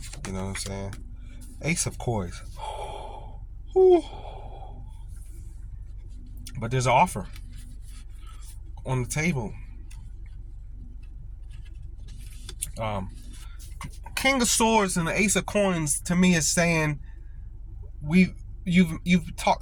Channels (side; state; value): both; identical; correlation 1.00